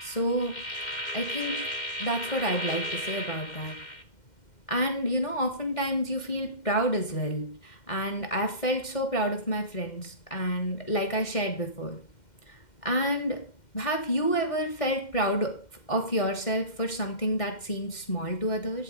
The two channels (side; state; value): right; late; 2.1 ms